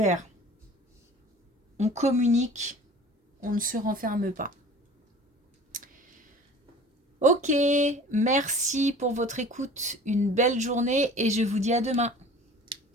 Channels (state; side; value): normal; both; correlation 0.44